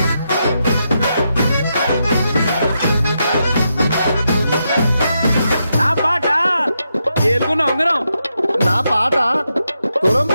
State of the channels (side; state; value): both; inverted; correlation -0.84